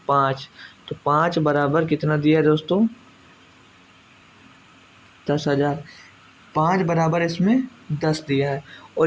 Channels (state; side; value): identical; both; correlation 1.00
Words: 5, तो 5 बराबर कितना दिया है दोस्तों, 10,000। 5 बराबर इसमें 10 दिया है।